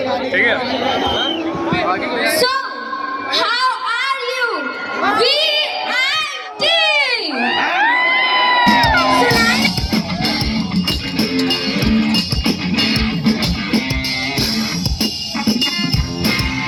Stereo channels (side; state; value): both; identical; correlation 1.00